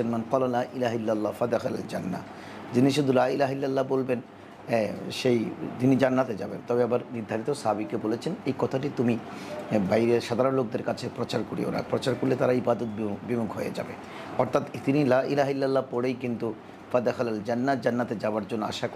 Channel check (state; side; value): identical; both; correlation 1.00